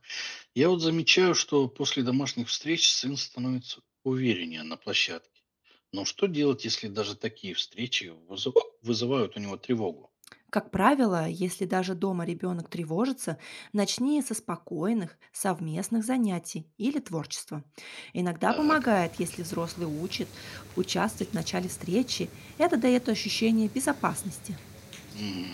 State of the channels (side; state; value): both; identical; correlation 1.00